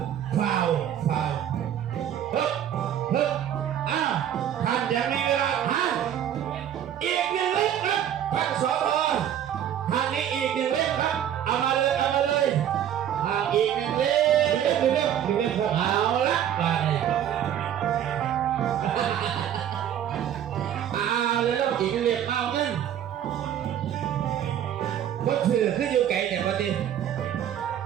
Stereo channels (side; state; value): left; quieter; 10.2 dB